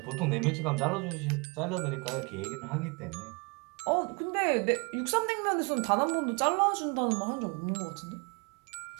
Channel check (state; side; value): quieter; left; 30.8 dB